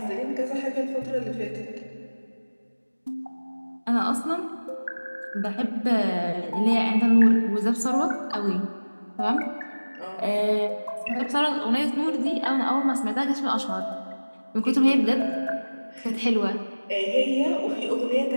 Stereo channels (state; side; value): inverted; both; correlation -1.00